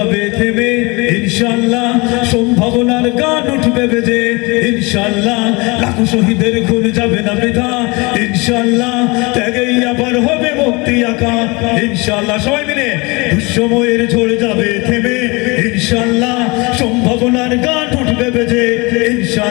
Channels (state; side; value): quieter; right; 26.3 dB